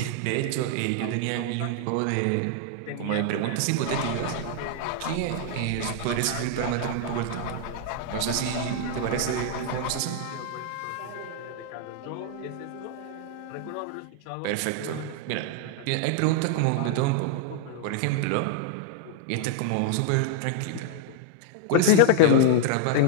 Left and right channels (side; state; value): both; different; correlation 0.00